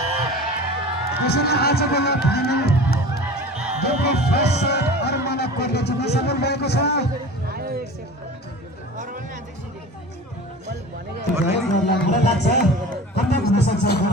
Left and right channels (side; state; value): both; normal; correlation 0.37